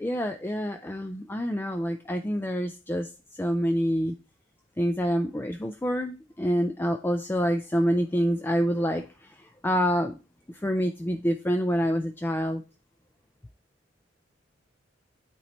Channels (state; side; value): normal; both; correlation 0.87